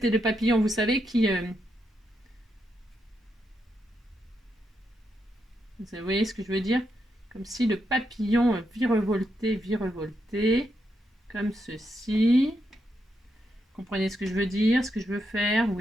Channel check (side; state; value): both; normal; correlation 0.82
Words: le papillon, vous savez, qui... Vous voyez ce que je veux dire? Comme si le papillon virevoltait, comme ceci. Comprenez ce que je veux dire, ce que je veux faire?